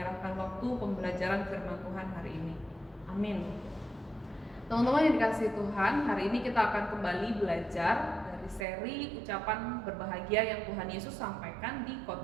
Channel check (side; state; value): left; drops out; at 8.7 s